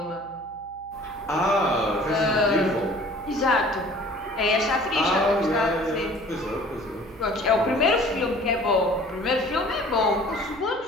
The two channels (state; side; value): noise; right; hum, 25 dB below the sound